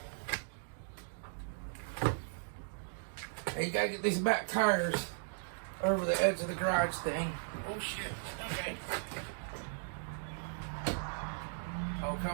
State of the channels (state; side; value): silent; left; digital silence